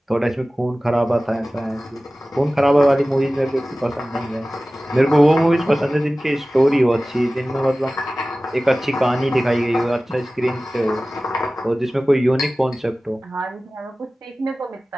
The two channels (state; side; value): normal; both; correlation 0.97